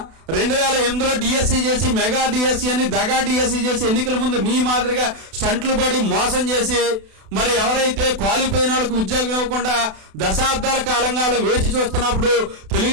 2008లో డిఎస్సీ చేసి మెగా డిఎస్సీ అని దగా డిఎస్సీ చేసి ఎన్నికల ముందు మీ మాదిరిగా స్టంట్లు పడి మోసం చేసి మరి ఎవరైతే క్వాలిఫై అయిన వాళ్ళకి ఉద్యోగం ఇవ్వకుండా దశాబ్దాల కాలంగా వేచి చూస్తున్నప్పుడు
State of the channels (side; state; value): left; late; 32 ms